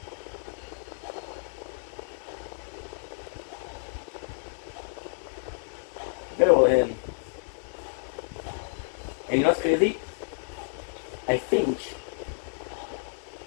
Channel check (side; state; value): right; silent; 58 dB below the other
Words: very well hidden. And you know what's crazy? I think,